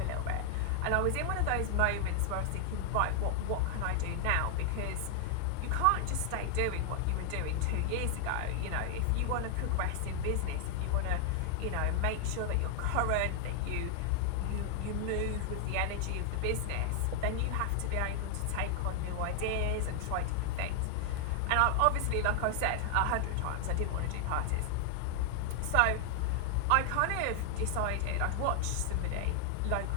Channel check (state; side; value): different; both; correlation 0.00